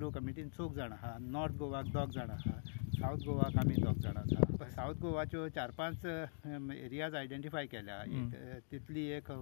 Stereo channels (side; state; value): right; silent; digital silence